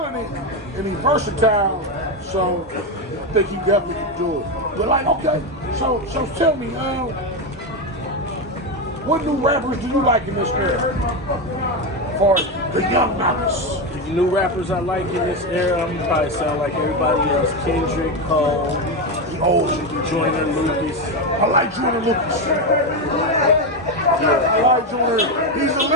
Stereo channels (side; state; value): both; normal; correlation 0.12